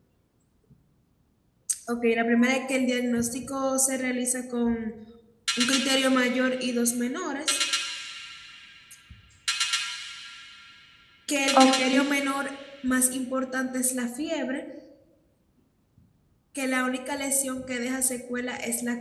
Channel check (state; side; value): identical; both; correlation 1.00